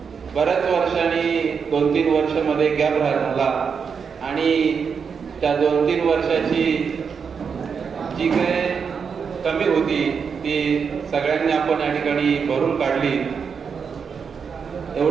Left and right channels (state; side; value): quieter; left; 6.2 dB